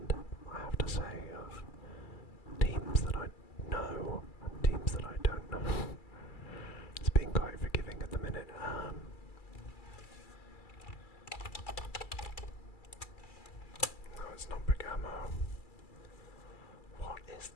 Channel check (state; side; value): late; right; 2.3 ms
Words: I have to say, of teams that I know and teams that I don't know. It's being quite forgiving at the minute. No, it's not Bergamo. What is